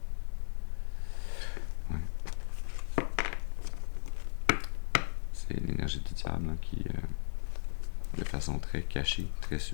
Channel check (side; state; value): right; silent; 54 dB below the other